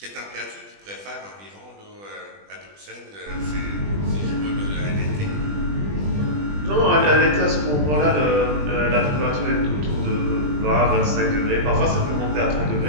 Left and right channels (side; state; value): left; late; 20 ms